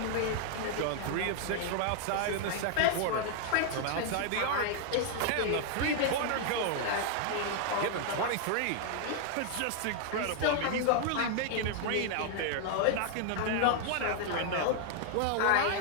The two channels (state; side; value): different; both; correlation 0.00